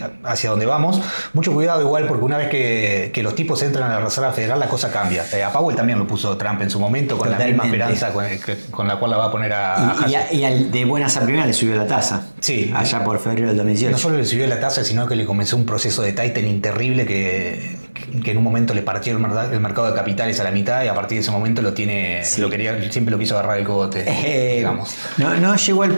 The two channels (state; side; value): inverted; both; correlation -1.00